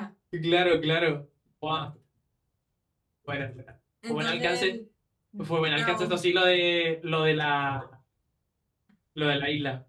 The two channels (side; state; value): both; identical; correlation 1.00